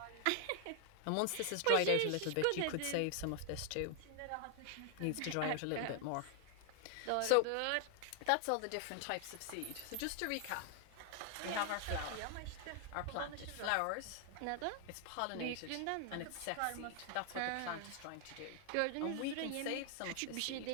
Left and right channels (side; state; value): both; different; correlation 0.00